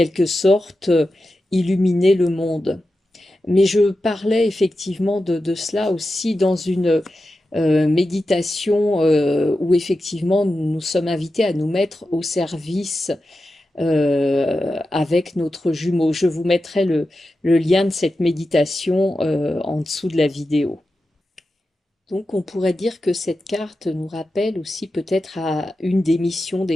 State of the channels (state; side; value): normal; both; correlation 0.91